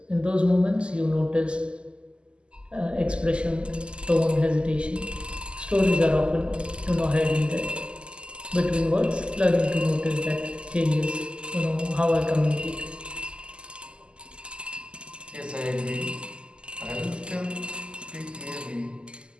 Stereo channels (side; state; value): left; late; 0.050 ms